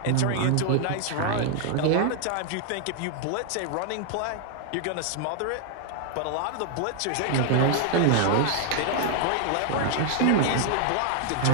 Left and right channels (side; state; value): both; different; correlation 0.00